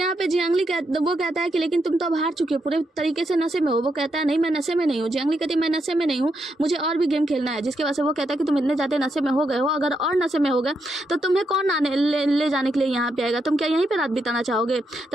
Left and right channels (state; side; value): normal; both; correlation 0.81